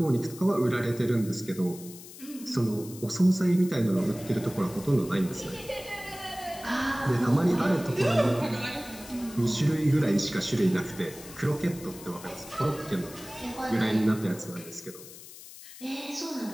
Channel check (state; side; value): noise; left; hiss, 16 dB below the sound